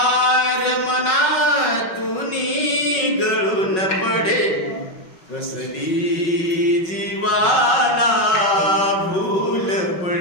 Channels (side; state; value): right; late; 5.4 ms